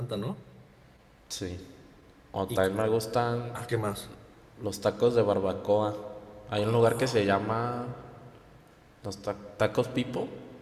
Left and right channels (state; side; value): identical; both; correlation 1.00